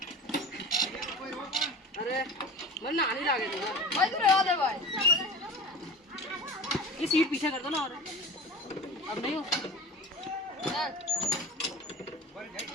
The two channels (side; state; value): both; normal; correlation 0.34